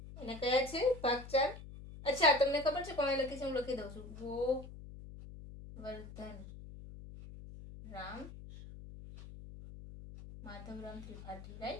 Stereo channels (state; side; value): noise; left; hum, 14 dB below the sound